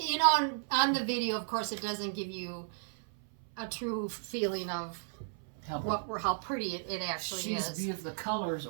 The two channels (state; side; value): silent; left; 55 dB below the other